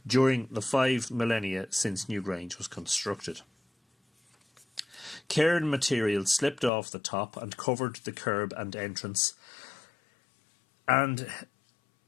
during the 5 millennia since Newgrange was constructed. Cairn material slipped off the top and covered the curb and entrance, and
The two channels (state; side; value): drops out; right; at 6.7 s